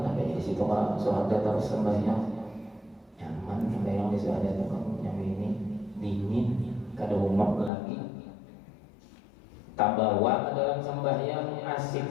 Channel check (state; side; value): drops out; right; at 7.7 s